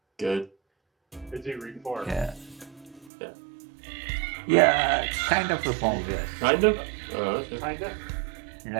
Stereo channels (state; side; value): drops out; left; at 3.1 s